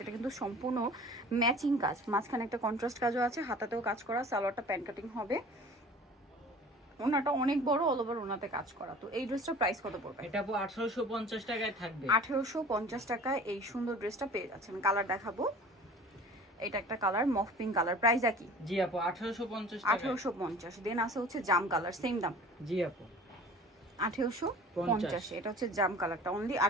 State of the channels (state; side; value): normal; both; correlation 0.44